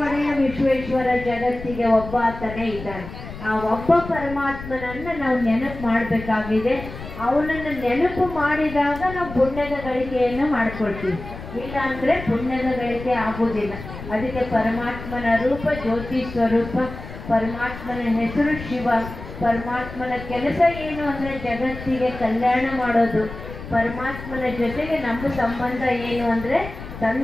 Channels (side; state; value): left; noise; rumble, 12 dB below the sound